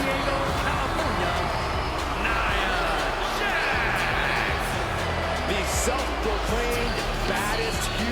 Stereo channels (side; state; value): both; identical; correlation 1.00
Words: California, Nia Jax. The self-proclaimed baddest